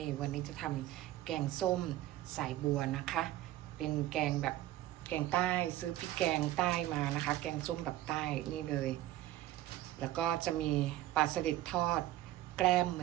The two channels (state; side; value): quieter; left; 14.8 dB